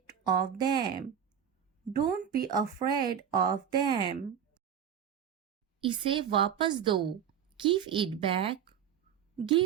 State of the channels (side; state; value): left; quieter; 8.6 dB